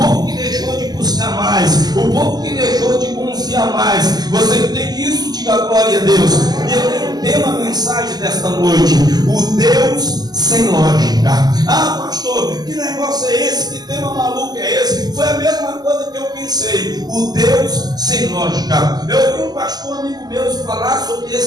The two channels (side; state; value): left; late; 0.20 ms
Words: que deixou de buscar mais, o povo que deixou de confiar mais. Você entende isso? Diga glória a Deus. E eu tenho um tema, mensagem desta noite: o Deus sem lógica. Ah, pastor, que negócio é esse? Que tema maluco é esse? Foi a mesma coisa que eu pensei: o Deus sem lógica. Eu ouvi um pastor amigo meu falar sobre